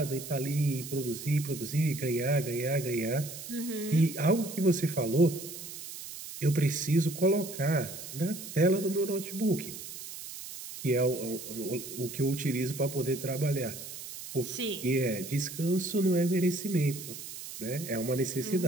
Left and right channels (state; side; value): noise; right; hiss, 11 dB below the sound